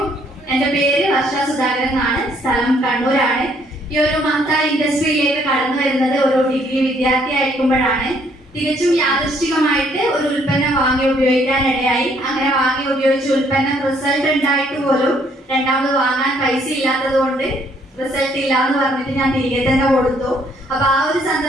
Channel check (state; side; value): normal; both; correlation 0.66